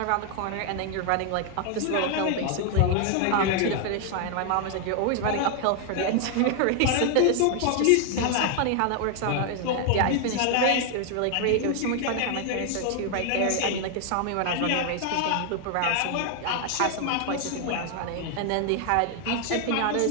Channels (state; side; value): different; both; correlation 0.00